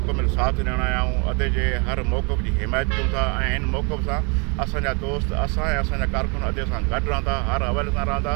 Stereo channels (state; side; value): quieter; left; 33.8 dB